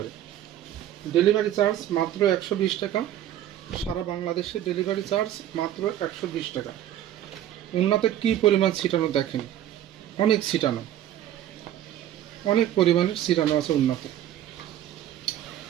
Delivery charge মাত্র 120 টাকা। সারা বাংলাদেশে ডেলিভারি চার্জ মাত্র 120 টাকা। ওড়নাতে কি পরিমাণ ছিটানো দেখেন, অনেক ছিটানো, অনেক পরিমাণের ছিটানো আছে ওড়নাতে।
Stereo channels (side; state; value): left; quieter; 11.8 dB